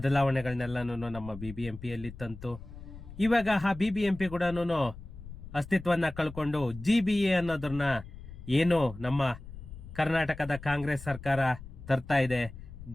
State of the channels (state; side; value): noise; left; rumble, 14 dB below the sound